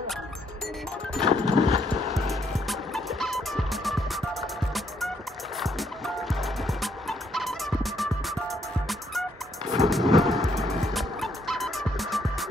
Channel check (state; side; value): normal; both; correlation 0.72